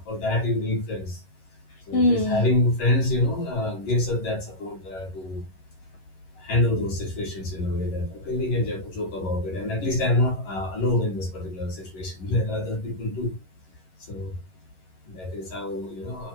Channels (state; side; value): late; right; 11 ms